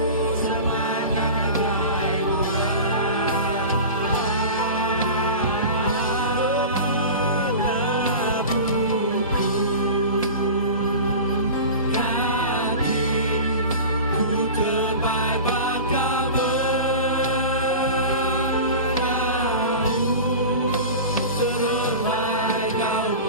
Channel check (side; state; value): both; inverted; correlation -0.32